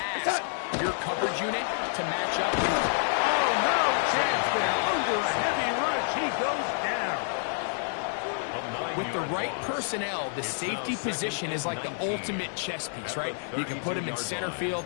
ask your coverage unit to match up. Oh, no chance there. Under a heavy rush, he goes down. With the right personnel, the safety position is like the ultimate chess piece, right? You can put him in center field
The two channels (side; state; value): right; silent; digital silence